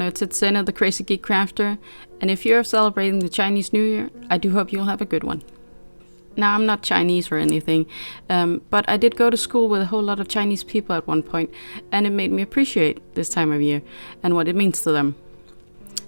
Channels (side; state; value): both; inverted; correlation -1.00